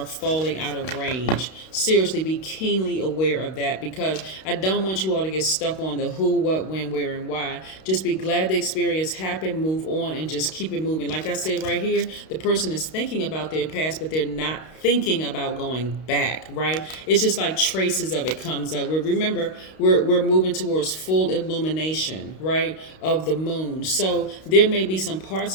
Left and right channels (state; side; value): late; right; 32 ms